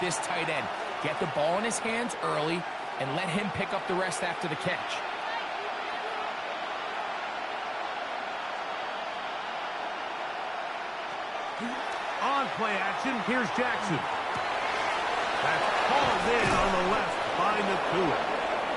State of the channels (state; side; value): identical; both; correlation 1.00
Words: tight end. Get the ball in his hands early and let him pick up the rest after the catch. On play action, here's Jackson. That's called in on the left by Nacua.